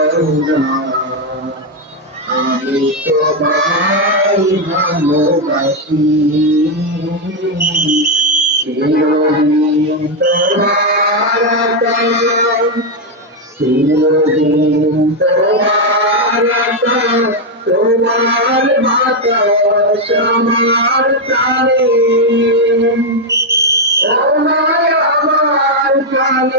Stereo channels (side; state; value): both; normal; correlation 0.03